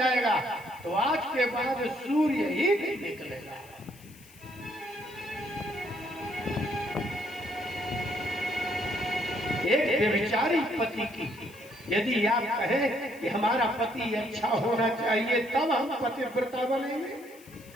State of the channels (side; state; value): left; noise; hiss, 23 dB below the sound